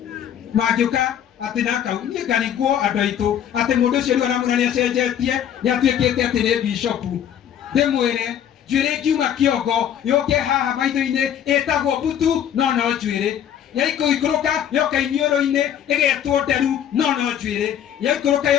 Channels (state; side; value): quieter; right; 9.7 dB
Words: Magioka. Ati naka ni kaniguo adoito ati mundu ucio ri anamurania cenjetie ni atuikite ati ni bishopu ndimwire njwire kiuma kiongo yoke haha maitho-ini etagwo butu no njwire yaikuikuruka yoka inioro-ini igetwo nderu no njwire yaikuruka